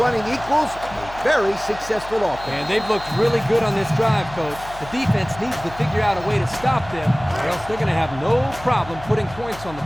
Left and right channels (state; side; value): noise; left; hum, 16 dB below the sound